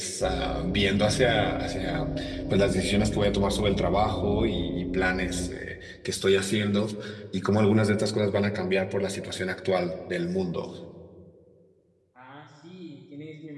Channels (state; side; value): identical; both; correlation 1.00